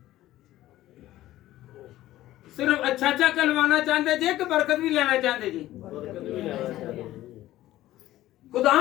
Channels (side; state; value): right; quieter; 14.9 dB